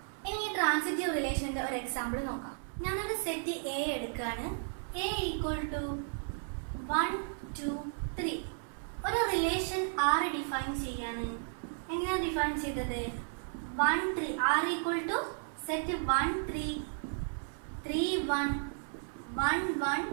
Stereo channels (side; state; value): left; silent; 55 dB below the other